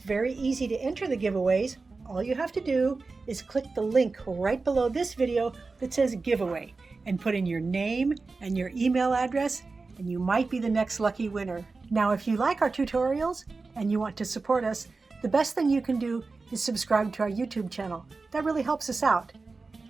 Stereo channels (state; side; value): quieter; left; 4.0 dB